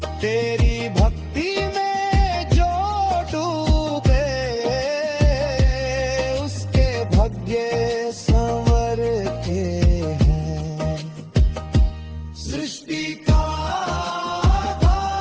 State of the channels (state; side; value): identical; both; correlation 1.00